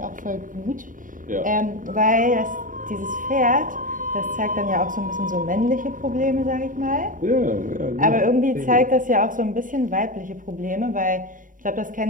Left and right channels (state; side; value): late; left; 0.39 ms